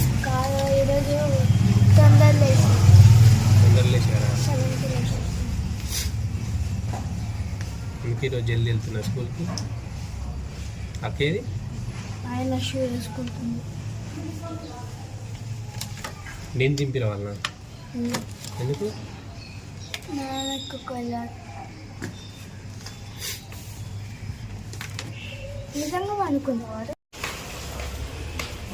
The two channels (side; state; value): both; identical; correlation 1.00